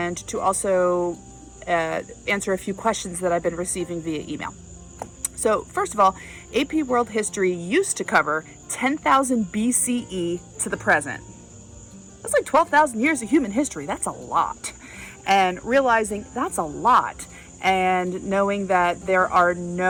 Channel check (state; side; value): identical; both; correlation 1.00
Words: to also answer a few questions that I've been receiving via email. So first of all, AP World History used to cover 10,000 BCE to the present. That's like 12,000 years of human history. That's a lot. And realizing that's a lot, and knowing that there are